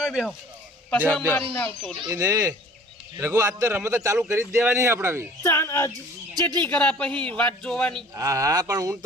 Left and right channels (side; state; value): both; normal; correlation 0.49